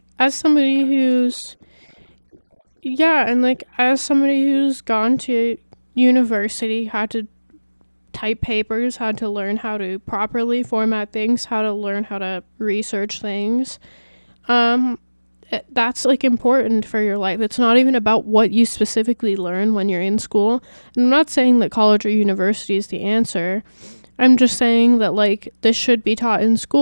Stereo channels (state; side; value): inverted; both; correlation -1.00